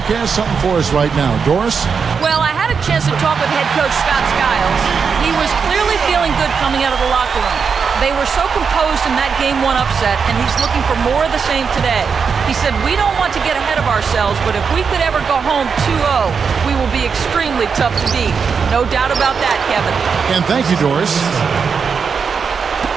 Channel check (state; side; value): quieter; left; 5.9 dB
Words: has something for us right now. Doris? Well, I had a chance to talk with head coach Scott Skiles. He was clearly feeling good coming out of the locker room. They were so composed in that Game 1 upset, and he's looking for more of the same today. He said, we don't want to get ahead of ourselves, but if we could ever go home 2-0, we will be extremely tough to beat. No doubt about that, Kevin. And thank you, Doris.